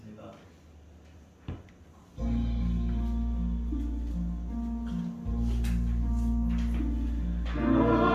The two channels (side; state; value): both; identical; correlation 1.00